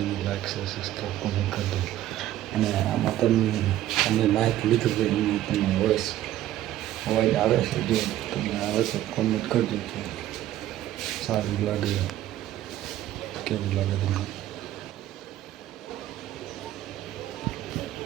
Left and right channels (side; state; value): left; quieter; 13.4 dB